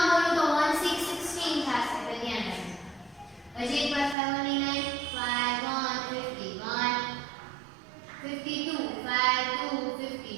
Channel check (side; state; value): left; drops out; at 4.2 s